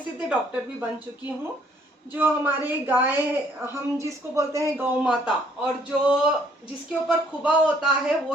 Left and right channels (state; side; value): normal; both; correlation 0.64